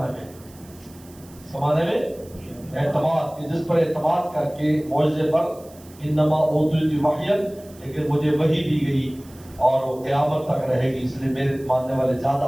میں، سمانے میں اعتماد، کہ جس پر اعتماد کر کے معجزے پر. انما اوتیت وحیا، لیکن مجھے وحی دی گئی اور وہ قیامت تک رہے گی، اس لیے میرے ماننے والے زیادہ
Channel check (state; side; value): noise; right; hiss, 24 dB below the sound